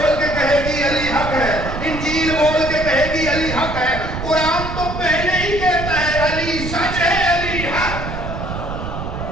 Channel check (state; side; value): noise; right; rumble, 6 dB below the sound